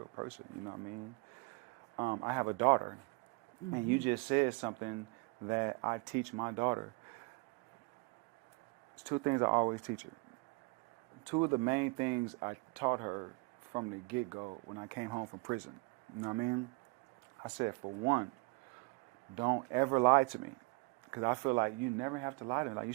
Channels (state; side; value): quieter; left; 28.1 dB